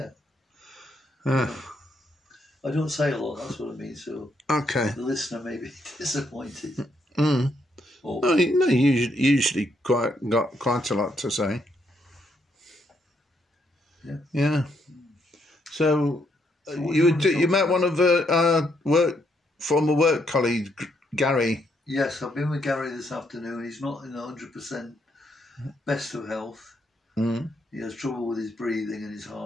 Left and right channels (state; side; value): normal; both; correlation 0.75